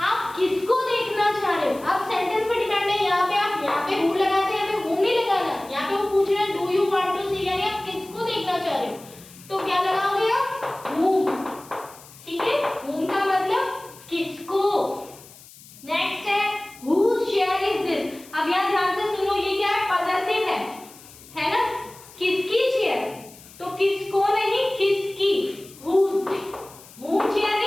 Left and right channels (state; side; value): noise; left; hiss, 21 dB below the sound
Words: आप किसको देखना चाह रहे हो। अब सेंटेंस पे डिपेंड है, यहाँ पे आप यहाँ पे who लगाते हैं, यहाँ पे whom नहीं लगाना। यहाँ पे वो पूछ रहे हैं do you want to see, यानी आप किसको देखना चाह रहे हो, तो क्या लगाओगे आप, whom, ठीक है, whom का मतलब किसको। नेक्स्ट है whose chair is this। अब यहाँ ध्यान से सुनो, ये क्या है, पॉसेसिव है ना, किसकी चेयर, तो किसको नहीं, किसकी, whose। whom chair